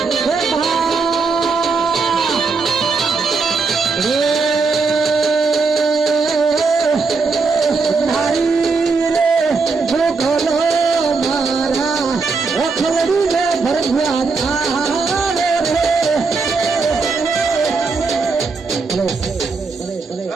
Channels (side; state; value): left; quieter; 4.4 dB